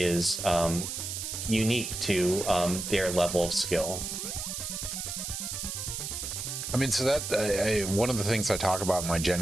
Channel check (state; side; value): noise; right; hiss, 5 dB below the sound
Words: unique to their level of skill. I mean, so that one of the things I talk about in my